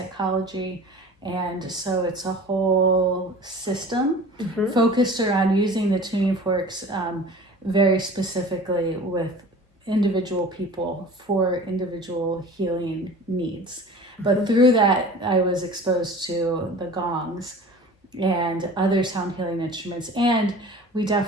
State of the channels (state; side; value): normal; both; correlation 0.41